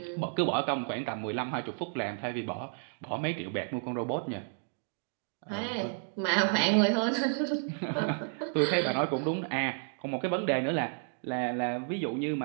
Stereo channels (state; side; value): silent; left; 57 dB below the other